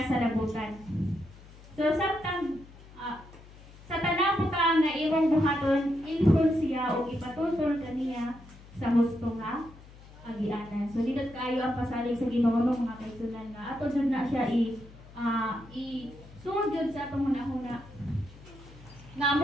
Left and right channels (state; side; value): noise; left; hum, 20 dB below the sound